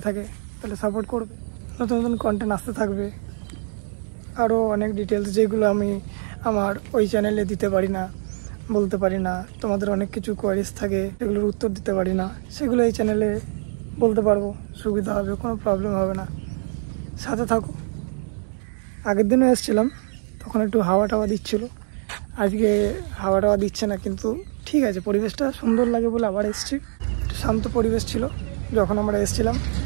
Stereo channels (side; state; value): left; silent; digital silence